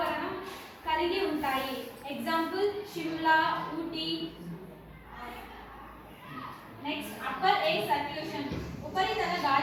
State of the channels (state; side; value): identical; both; correlation 1.00